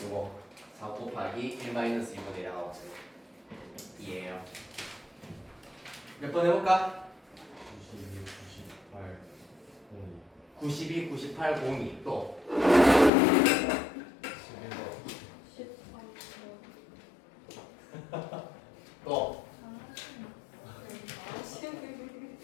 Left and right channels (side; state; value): right; drops out; at 13.1 s